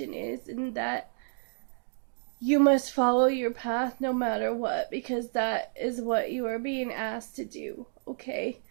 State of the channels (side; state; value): left; silent; digital silence